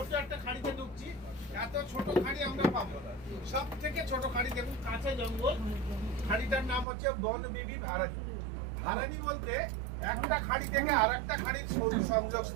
একটা খাড়িতে ঢুকছি, এত ছোট খাড়ি আমরা পাবো, সব থেকে ছোট খাড়ি দেখুন, কাছে জঙ্গল। খাড়িটার নাম হচ্ছে বন বিবি ভারানি। ভারানি বলতে একটা খাড়ি থেকে আর একটা খাড়ির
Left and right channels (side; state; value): left; drops out; at 6.9 s